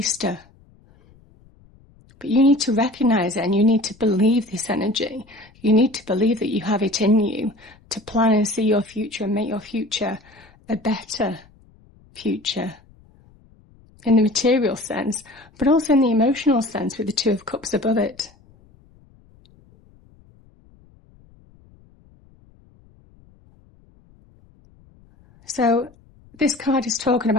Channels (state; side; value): noise; left; rumble, 29 dB below the sound